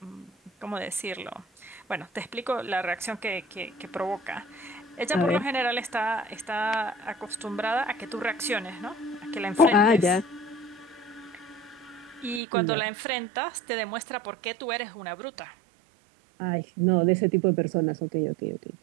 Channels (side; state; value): left; drops out; at 12.4 s